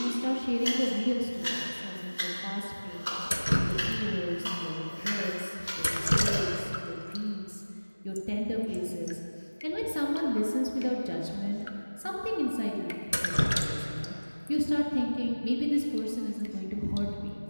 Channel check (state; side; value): inverted; both; correlation -1.00